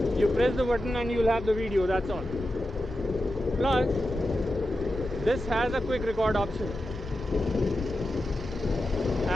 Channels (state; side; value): normal; both; correlation 0.91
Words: You press the button and you'll have the video, that's all. Plus, this has a quick record option.